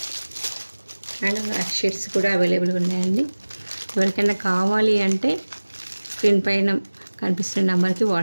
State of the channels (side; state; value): both; inverted; correlation -1.00